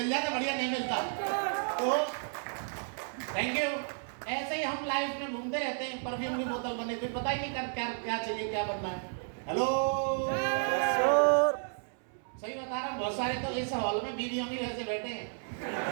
जाता, बढ़िया नहीं मिलता। तो थैंक यू। ऐसे ही हम लाइफ में घूमते रहते हैं, परफ्यूम की बोतल बने, फिर पता ही नहीं कर क्या क्या चाहिए, क्या बनना है। हेलो सर, सही बता रहा हूँ, बहुत सारे तो इस हॉल में बीवियों भी वैसे बैठे हैं।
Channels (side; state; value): left; silent; 56 dB below the other